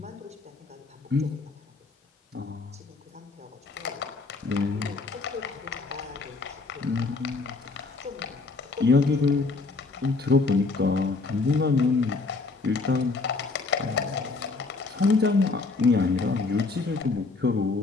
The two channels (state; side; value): quieter; right; 3.9 dB